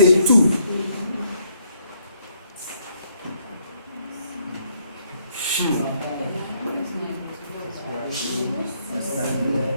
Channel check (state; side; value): inverted; both; correlation -0.71